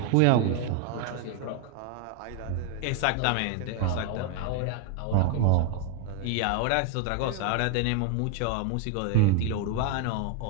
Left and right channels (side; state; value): both; different; correlation 0.01